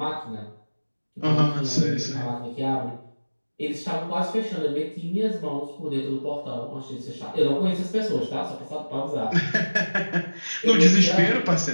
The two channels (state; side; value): inverted; both; correlation -1.00